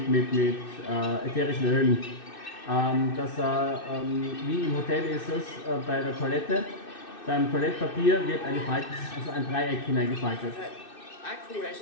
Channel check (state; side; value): late; right; 2.6 ms